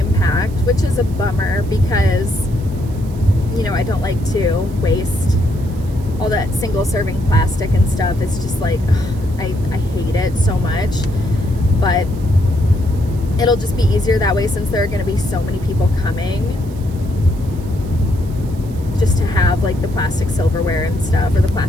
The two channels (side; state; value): right; noise; hiss, 24 dB below the sound